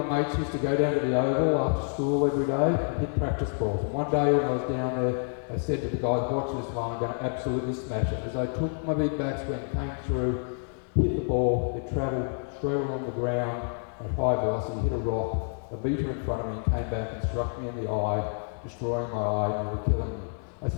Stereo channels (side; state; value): right; silent; 57 dB below the other